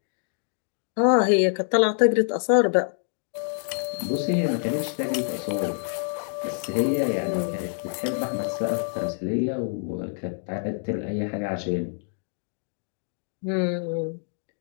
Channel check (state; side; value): silent; right; digital silence